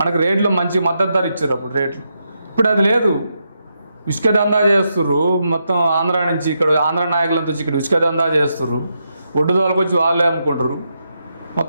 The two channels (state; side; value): inverted; both; correlation -0.83